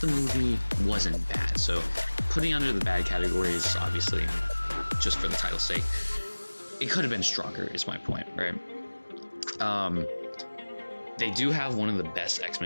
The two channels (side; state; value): both; inverted; correlation -1.00